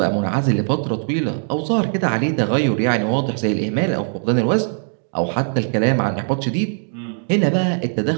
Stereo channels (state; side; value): silent; left; digital silence